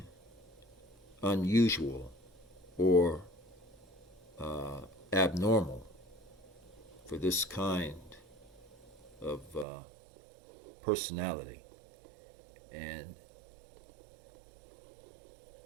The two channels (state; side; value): drops out; left; at 9.7 s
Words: unusual or abnormal for this kind of personality. And